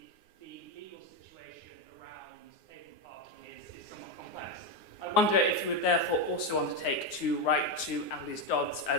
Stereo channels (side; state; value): right; late; 9.7 ms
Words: The legal situation around pavement parking is somewhat complex. I wonder if you would therefore also undertake to write to Annalise Dodds